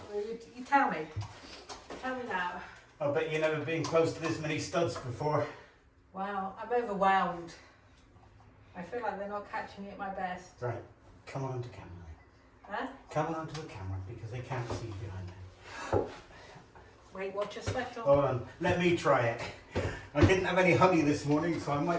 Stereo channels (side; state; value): both; identical; correlation 1.00